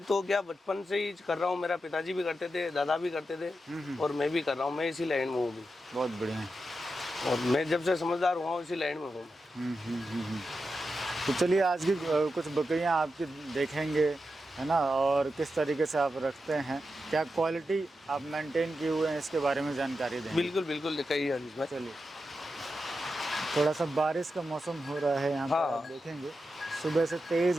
तो क्या बचपन से ही कर रहा हूँ, मेरा पिताजी भी करते थे, दादा भी करते थे, और मैं भी कर रहा हूँ। मैं इसी लाइन में हूँ भी। बहुत बढ़िया। और मैं जब से समझदार हुआ हूँ इसी लाइन में हूँ। तो चलिए, आज की कुछ बकरियां आपकी देखेंगे, है ना, और किस तरीके से आप रखते हैं, क्या क्वालिटी आप मेंटेन किए हुए हैं, इसके बारे में जानकारी देंगे। बिल्कुल बिल्कुल, दिखाइए हरीश भाई। चलिए, थोड़ा सा बारिश का मौसम हो रहा है यहाँ पर, हाँ। आप देखेंगे सुबह से तेज़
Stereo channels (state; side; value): normal; both; correlation 0.89